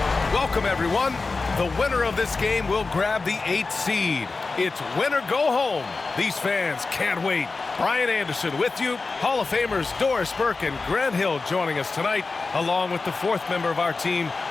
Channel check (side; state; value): right; quieter; 3.9 dB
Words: Welcome, everyone. The winner of this game will grab the 8th seed. It's win or go home. These fans can't wait. Brian Anderson with you. Hall of Famers Doris Burke and Grant Hill joining us tonight, along with the 4th member of our team,